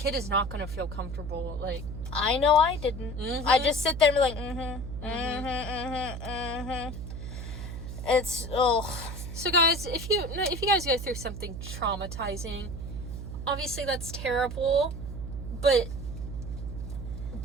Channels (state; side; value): noise; right; hum, 7 dB below the sound